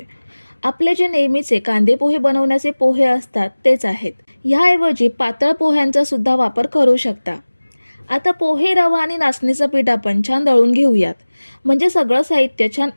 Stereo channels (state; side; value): inverted; both; correlation -1.00